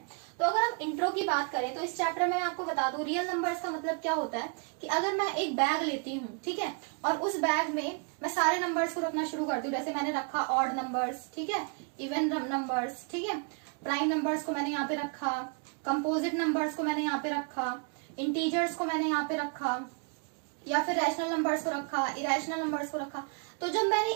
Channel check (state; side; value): quieter; left; 36.6 dB